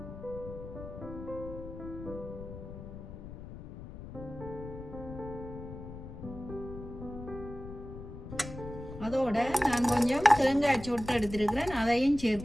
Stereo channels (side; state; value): left; noise; rumble, 11 dB below the sound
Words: அதோட நான் கொஞ்சம் தேங்காய் சொட்டு எடுத்துருக்கிறேன், அதையும்